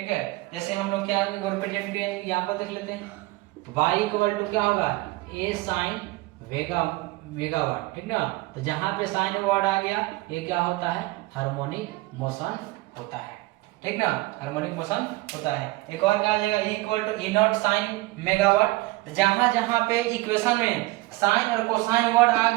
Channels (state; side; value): quieter; left; 21.2 dB